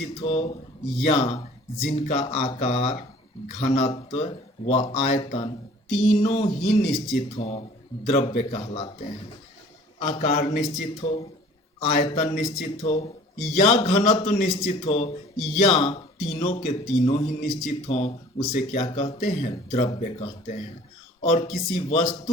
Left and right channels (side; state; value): both; normal; correlation 0.50